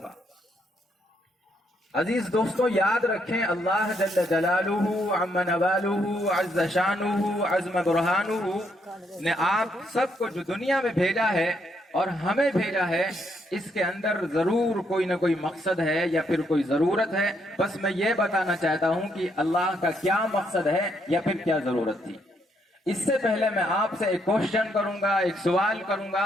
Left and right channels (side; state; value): both; normal; correlation 0.74